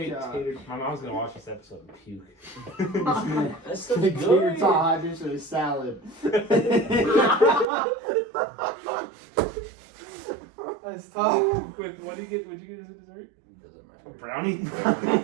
god. tater. My mom's gonna watch this episode and puke. That's such Big tater good. tot hot dish with a salad. That's tough. Quick, what do you get? What'd you get as a dessert? Doesn't A matter. brownie.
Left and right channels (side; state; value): left; drops out; at 7.7 s